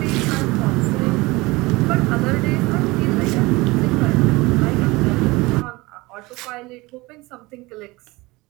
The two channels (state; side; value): quieter; left; 22.3 dB